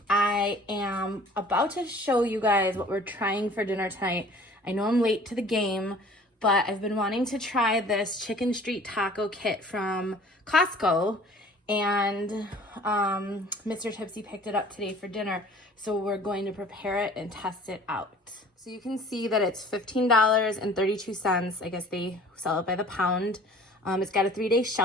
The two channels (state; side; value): normal; both; correlation 0.49